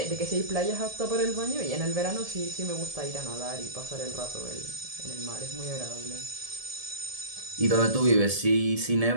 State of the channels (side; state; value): left; late; 1.7 ms